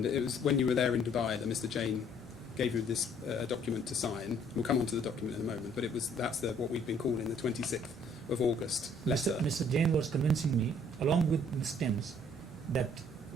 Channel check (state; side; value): normal; both; correlation 0.61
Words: it was when you were there in Dubai that Mr. Jain gave you this document to sign. We'll come on to the document in a moment, but that's what we've been calling the 26th of August letter. Mr. Jain was convincing me, along with Ms. Timms, that